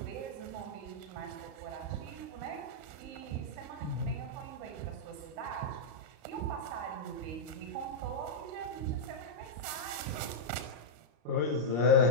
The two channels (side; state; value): left; late; 34 ms